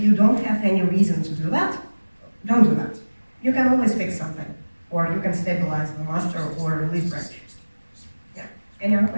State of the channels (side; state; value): both; inverted; correlation -1.00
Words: you don't have any reason to do that, don't do that. You can always fix something, or you can stabilize the master or release branch. Yeah. Any other